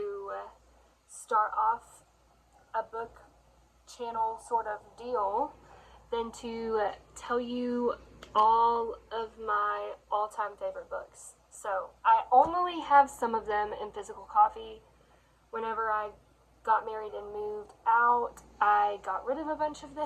start off a book channel sort of deal than to tell you all of my all-time favorite books. So I only have some of them in physical copy. Whenever I got married and moved out, I got rid of a bunch of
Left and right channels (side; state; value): both; identical; correlation 1.00